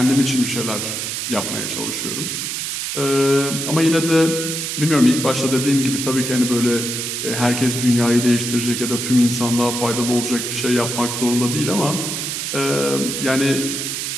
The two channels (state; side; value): noise; right; hiss, 3 dB below the sound